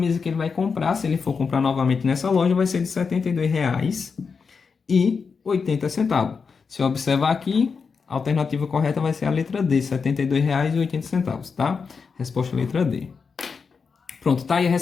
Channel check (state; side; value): quieter; right; 5.4 dB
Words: que ele vai comprar, se ele for comprar novamente nessa loja, vai ser de R$ 72,80. Se eu observar aqui, a alternativa correta vai ser a letra D, R$ 72,80, tá? Resposta letra D. Pronto, tá aí